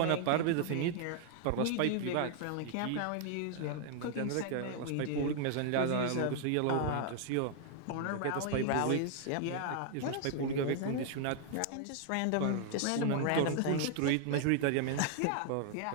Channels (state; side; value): different; both; correlation 0.00